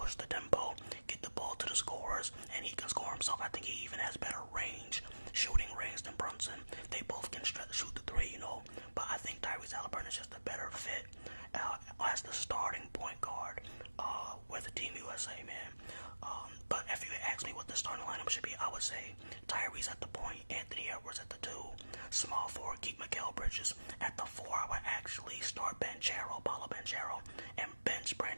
the tempo, get the ball to the scorers, and he can score himself. I think he even has better shooting range than Brunson. They both can shoot the three, you know, but I think Tyrese Halliburton is just a better fit as the starting point guard with the Team USA, man. But if you ask me what the starting lineup should be, I would say Tyrese at the point, Anthony Edwards at the 2, small forward, keep Mikal Bridges. At the 4, I would actually start Paolo Banchero, and bench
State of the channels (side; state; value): both; inverted; correlation -1.00